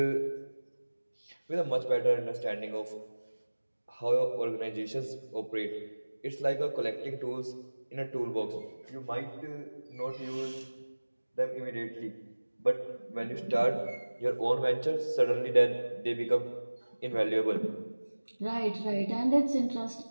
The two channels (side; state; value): both; inverted; correlation -1.00